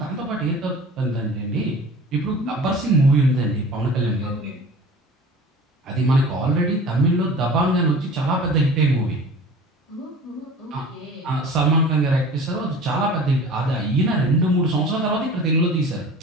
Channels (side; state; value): both; normal; correlation 0.41